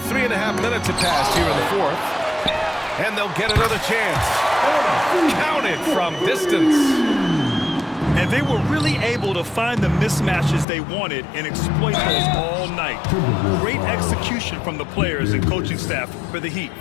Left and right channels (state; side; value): drops out; right; at 10.7 s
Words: minutes have passed here in the fourth. And they'll get another chance. Counted from distance. And they were really able to find the mismatches they wanted and exploit those all night. Great execution from the players and coaching staff for the Heat.